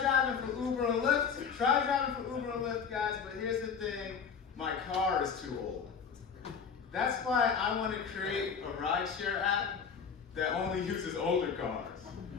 for Uber and Lyft. Guys, but here's the thing, my car is too old. That's why I want to create a rideshare app that only uses older cars.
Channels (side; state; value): right; quieter; 6.4 dB